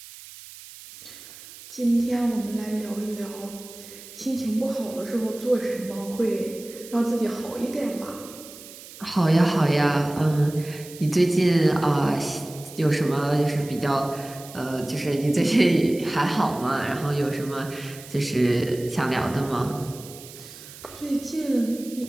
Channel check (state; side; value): noise; right; hiss, 17 dB below the sound